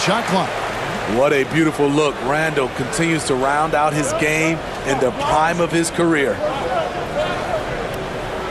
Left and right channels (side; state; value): both; identical; correlation 1.00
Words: clock. What a beautiful look. Randall continues to round out his game in the prime of his career.